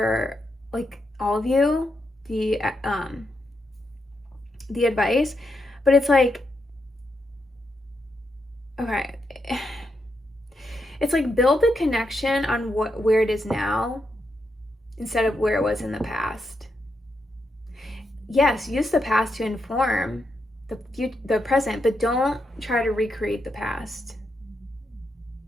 like all of you, the advice, but it's like, okay, it's like build the connection on where it is now instead of where it was in the past. Yes, use the past to inform the present, but don't try to recreate the past.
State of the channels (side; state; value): both; normal; correlation 0.83